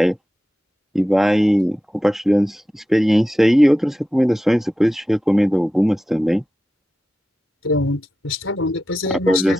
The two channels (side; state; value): both; normal; correlation 0.93